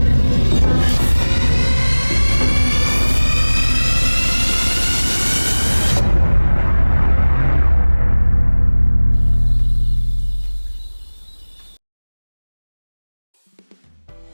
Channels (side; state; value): both; inverted; correlation -1.00